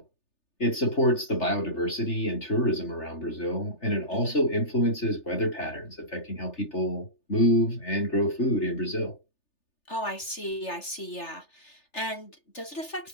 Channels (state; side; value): late; right; 3.3 ms